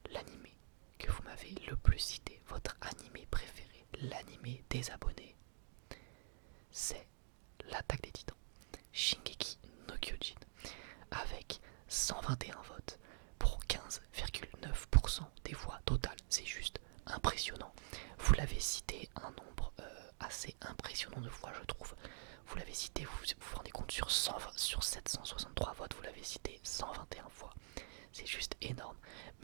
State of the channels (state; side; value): silent; left; digital silence